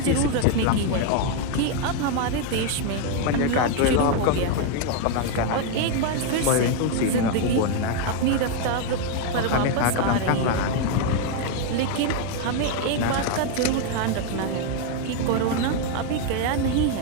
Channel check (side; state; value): both; different; correlation 0.01